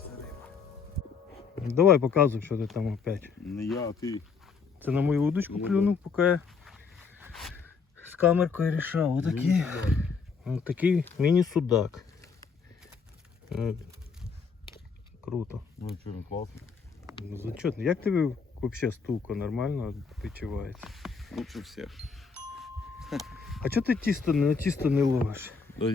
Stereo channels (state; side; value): quieter; right; 5.4 dB